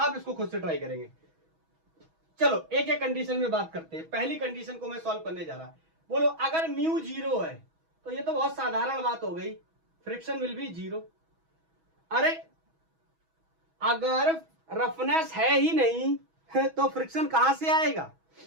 इसको खुद से ट्राई करेंगे। चलो एक एक कंडीशन में बात करते हैं। पहली कंडीशन को मैं सॉल्व करने जा रहा। बोलो अगर म्यू 0 है तो ये तो बहुत साधारण बात हो गई, फ्रिक्शन विल बी 0। अरे अगर रफनेस है ही नहीं तो फ्रिक्शन कहां से आएगा?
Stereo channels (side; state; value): left; late; 6.2 ms